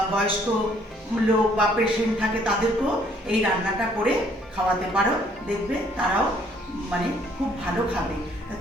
বয়স্ক লোক বা পেশেন্ট থাকে তাদেরকেও এই রান্নাটা করে খাওয়াতে পারো, দেখবে তারাও মানে খুব ভালো খাবে।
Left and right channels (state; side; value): normal; both; correlation 0.63